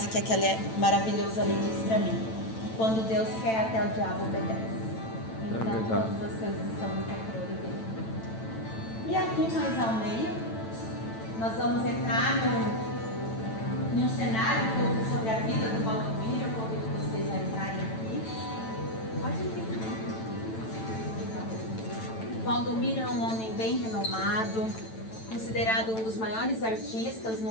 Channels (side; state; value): right; late; 9.0 ms